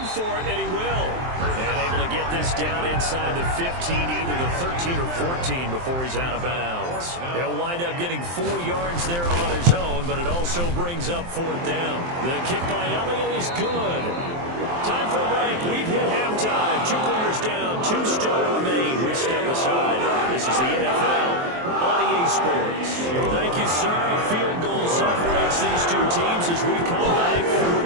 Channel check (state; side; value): late; left; 23 ms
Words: for it, and he will. And able to get this down inside the 15, either the 13 or 14 before he's out of bounds. He'll wind up getting 4 yards there on his own, but it also brings up 4th down. The kick by Elliott is good. Time for a break. We've hit halftime. 2 quarters down, 2 still remain. We step aside. This is the NFL on EA Sports. Thank you, sir. A field goal separates these 2 teams as we come back for